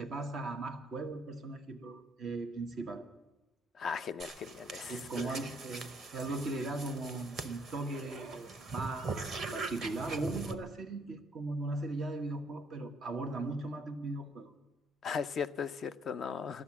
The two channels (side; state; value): both; normal; correlation 0.66